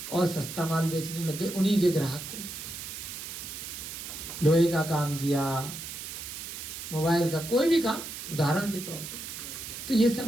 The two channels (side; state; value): right; noise; hiss, 8 dB below the sound